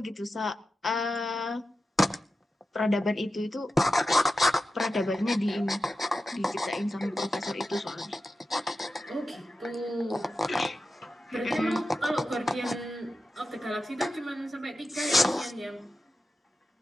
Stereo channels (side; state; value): both; normal; correlation 0.92